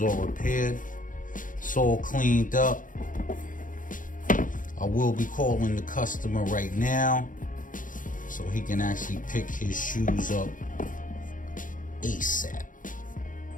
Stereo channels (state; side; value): late; right; 0.38 ms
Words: all repaired. Sole cleaned up. I will be calling the customer right now so he can actually pick his shoes up ASAP.